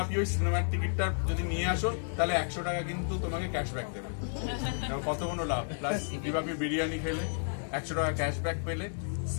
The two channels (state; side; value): silent; right; digital silence